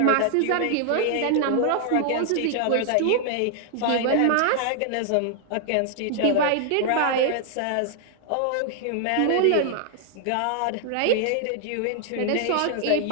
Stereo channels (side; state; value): both; different; correlation -0.01